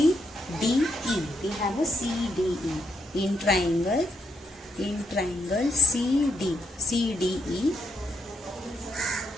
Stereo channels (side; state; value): both; normal; correlation 0.79